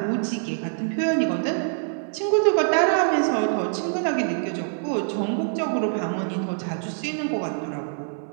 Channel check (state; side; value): silent; left; digital silence